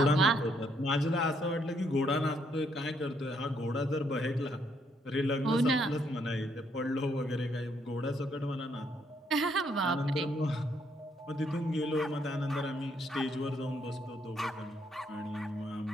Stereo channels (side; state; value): both; normal; correlation 0.72